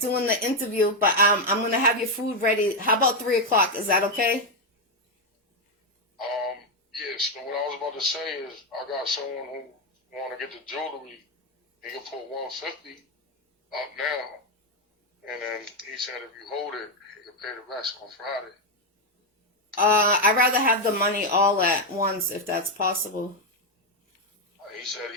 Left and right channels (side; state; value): both; normal; correlation 0.04